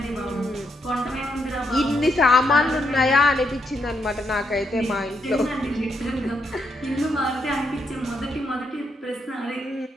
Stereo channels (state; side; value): normal; both; correlation 0.78